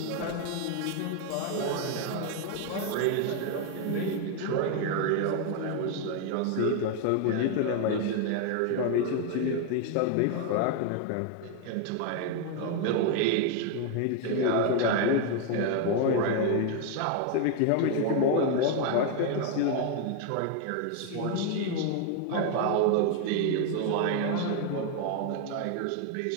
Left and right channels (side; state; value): both; different; correlation 0.01